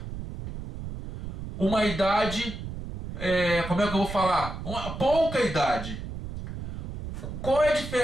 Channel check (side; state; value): right; noise; rumble, 8 dB below the sound